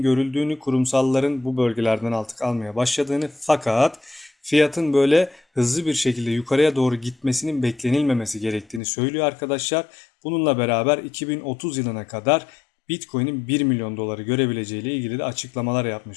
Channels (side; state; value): right; drops out; at 8.8 s